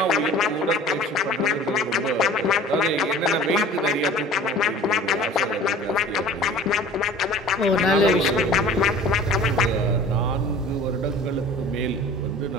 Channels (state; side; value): normal; both; correlation 0.43